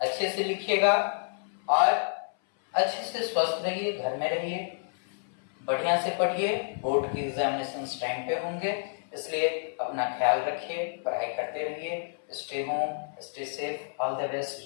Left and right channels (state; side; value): silent; right; 58 dB below the other